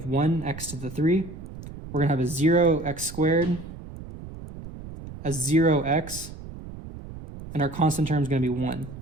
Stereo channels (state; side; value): noise; right; rumble, 13 dB below the sound